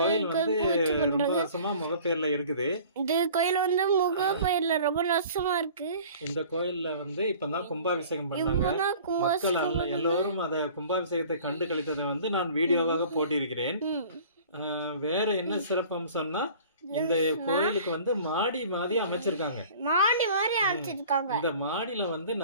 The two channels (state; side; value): inverted; both; correlation -0.47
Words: வந்து ரொம்ப வருஷமா முகப்பேர்ல இருக்குது. இந்த கோயில் வந்து முகப்பேர்ல ரொம்ப வருஷமா இருக்கு. இந்த கோயில்ல வந்து இப்பதான் கும்பாபிஷேகம் பண்ணாங்க. மக்கள் எல்லோரும் அத கும்பாபிஷேகத்தை கண்டு கழித்ததை வந்து நான் வீடியோவாக போட்டிருக்கிறேன். வேற என்ன சிறப்பு அம்சம்னா, இந்த கோயிலுக்கு வந்து மாடி மாதிரி அமைச்சிருக்காங்க. இந்த மாடியில வந்து